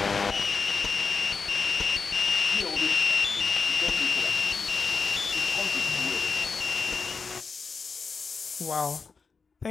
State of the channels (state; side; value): quieter; right; 5.0 dB